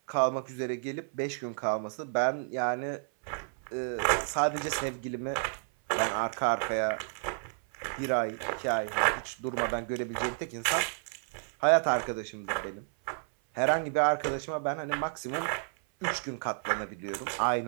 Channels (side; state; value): left; silent; 57 dB below the other